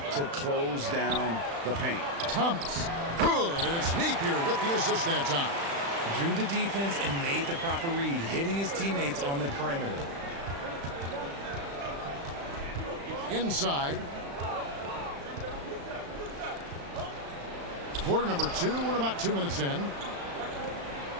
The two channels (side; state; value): left; late; 35 ms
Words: to close down the paint. Thomas. Good. And it's Napier with the assist that time. Drew the defense and made the proper read, hitting his teammates on the perimeter. Inside. Quarter number 2. We're about 2 minutes in.